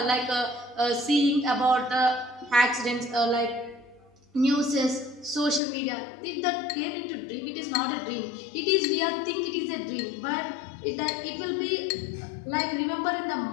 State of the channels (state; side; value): drops out; right; at 5.6 s